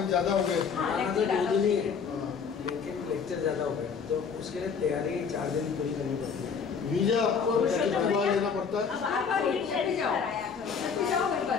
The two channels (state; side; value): quieter; right; 6.2 dB